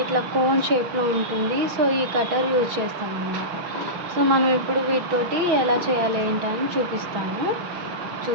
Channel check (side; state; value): left; late; 6.2 ms